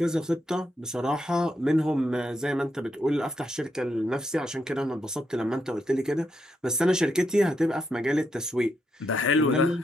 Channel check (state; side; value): normal; both; correlation 0.81